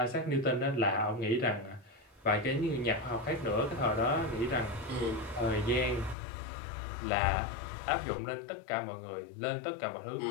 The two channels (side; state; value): right; drops out; at 6.2 s